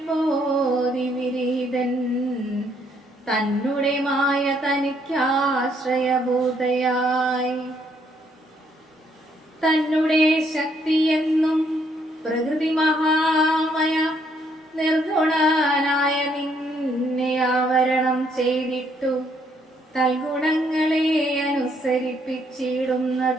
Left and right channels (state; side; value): normal; both; correlation 0.70